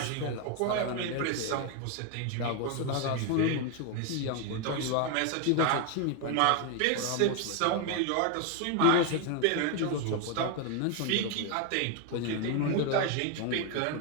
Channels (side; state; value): both; different; correlation 0.01